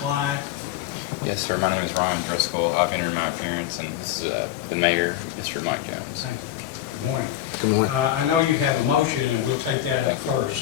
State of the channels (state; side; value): quieter; right; 12.9 dB